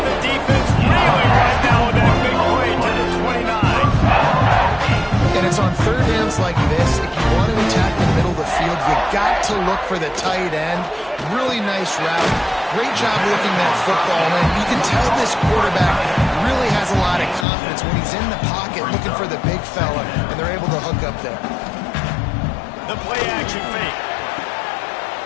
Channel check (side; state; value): right; drops out; at 17.4 s